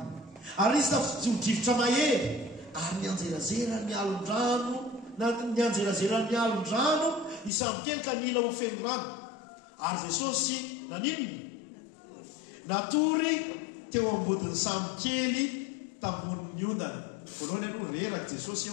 ary nisy tafijodrivotra mahery ary nianjerazera ny alon-drano ny alon-drano ny samokely ka nila ho feno rano ary jesosy naninony natory teo ambodin'ny samokely tamboniny ondana voalohany aloha reraka jesosy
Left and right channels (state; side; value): drops out; right; at 7.5 s